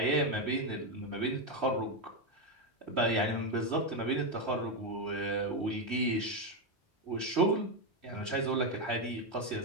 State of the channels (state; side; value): normal; both; correlation 0.07